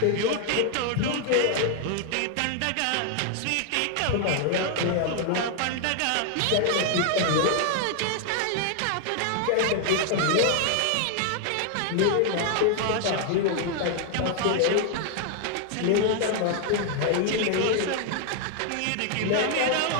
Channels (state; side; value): different; both; correlation 0.00